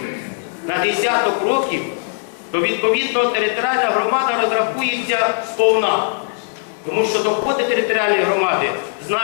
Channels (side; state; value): right; silent; digital silence